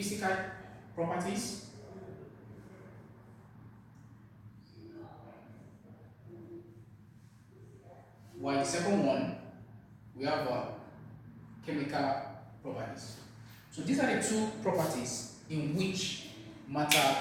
properties, while the second one, we have chemical properties. So these are the two properties in which matter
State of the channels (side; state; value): both; identical; correlation 1.00